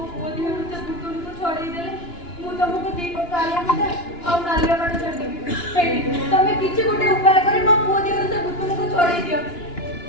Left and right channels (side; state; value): right; late; 2.9 ms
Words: ପୁଅ ଦେହରୁ ସେ ଭୁତୁଣିକୁ ଛଡ଼େଇ ଦେଲେ ମୁଁ ତମକୁ ଦିଟା କାଳିଆ ମୁଣ୍ଡା ଆଉ ନାଲିଆ କାଠ ଛାଡ଼ିଦେବି। ହେଇଟି ତମେ କିଛି ଗୋଟେ ଉପାୟ କରି ମୋ ପୁଅ ଦେହରୁ ସେ ଭୁତୁଣିକୁ ଛଡ଼େଇ ଦିଅ।